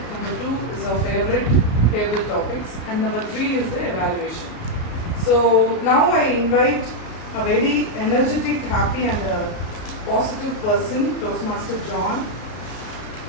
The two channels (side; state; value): right; late; 33 ms